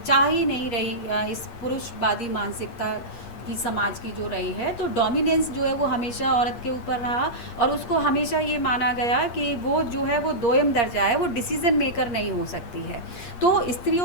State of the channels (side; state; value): right; late; 8.5 ms